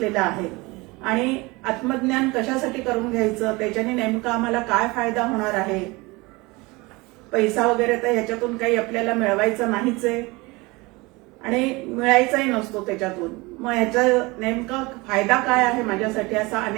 आहे। आणि आत्मज्ञान कशासाठी करून घ्यायचं, त्याच्याने नेमका आम्हाला काय फायदा होणार आहे। पैसा वगैरे तर ह्याच्यातून काही आपल्याला मिळवायचं नाहीच आहे आणि मिळायचाही नसतो त्याच्यातून, मग ह्याचा नेमका फायदा काय आहे माझ्यासाठी असा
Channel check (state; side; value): quieter; left; 23.9 dB